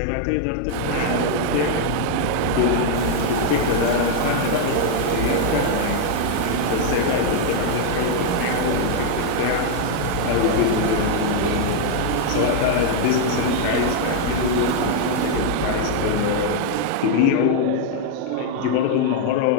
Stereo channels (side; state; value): both; different; correlation 0.00